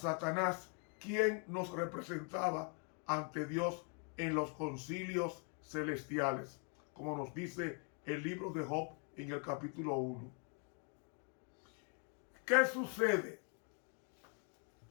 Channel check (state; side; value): quieter; right; 38.3 dB